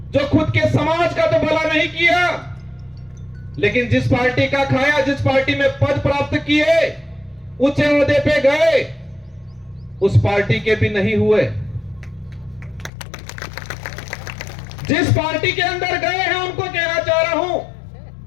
जो खुद के समाज का तो भला नहीं किया, लेकिन जिस पार्टी का खाया, जिस पार्टी में पद प्राप्त किए, ऊंचे ओहदे पे गए, उस पार्टी के भी नहीं हुए। जिस पार्टी के अंदर गए हैं उनको कहना चाह रहा हूं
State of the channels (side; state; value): right; drops out; at 12.9 s